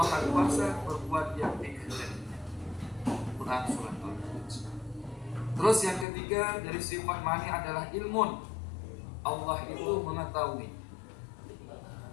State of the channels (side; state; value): right; drops out; at 6.1 s